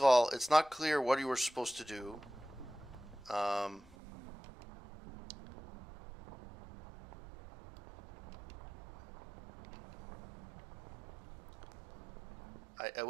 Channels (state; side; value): drops out; left; at 4.0 s